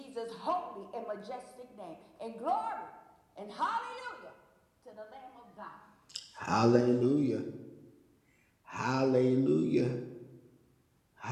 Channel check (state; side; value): identical; both; correlation 1.00